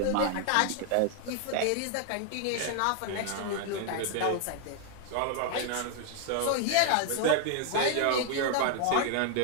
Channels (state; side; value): different; both; correlation 0.00